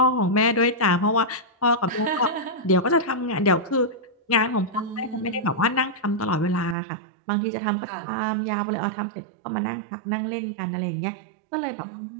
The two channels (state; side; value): drops out; left; at 6.8 s